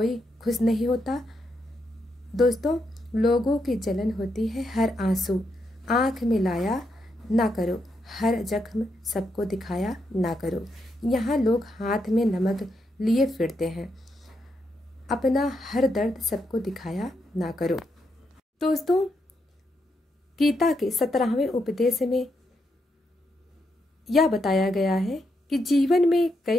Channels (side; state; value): both; normal; correlation 0.81